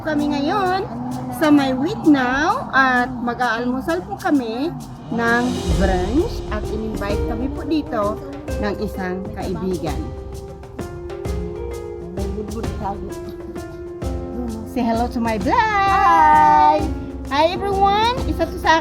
kami ngayon sa My Wheat Now at mag-aalmusal po kami ng brunch at in-invite kami po dito ng isang kaibigan. Say hello to my vlog! Hi everyone! Isa to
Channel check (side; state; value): both; identical; correlation 1.00